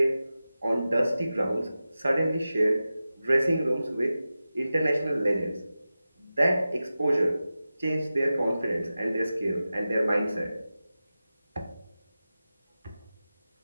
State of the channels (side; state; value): both; inverted; correlation -0.94